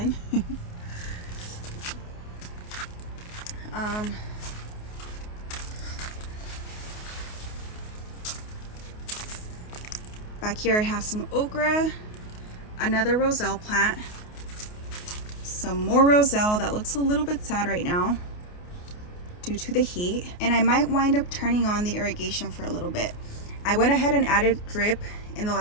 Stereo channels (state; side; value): late; right; 28 ms